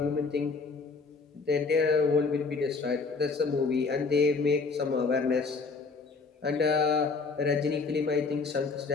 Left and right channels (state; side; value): quieter; right; 4.4 dB